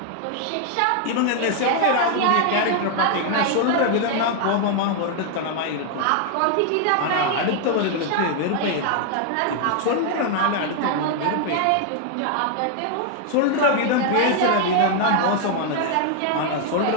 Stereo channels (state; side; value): different; both; correlation 0.00